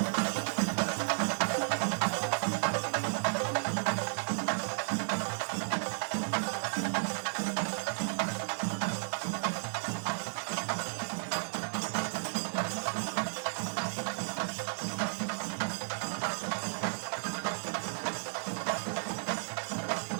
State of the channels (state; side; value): silent; left; digital silence